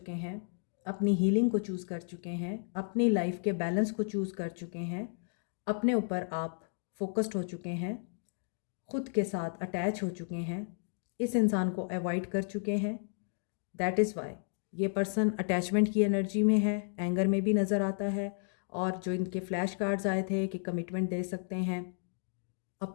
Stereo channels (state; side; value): silent; right; 56 dB below the other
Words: हैं, अपनी हीलिंग को चूज़ कर चुके हैं, अपनी लाइफ के बैलेंस को चूज़ कर चुके हैं, अपने ऊपर आप फोकस्ड हो चुके हैं, ख़ुद के साथ अटैच हो चुके हैं, इस इंसान को अवॉइड कर चुके हैं। दैट इज़ वाई ये पर्सन अटैचमेंट की एनर्जी में है, एंगर में भी नज़र आता है। और जो इनके फ्लैश कार्ड्स आए थे कि कमिटमेंट दे सकते हैं,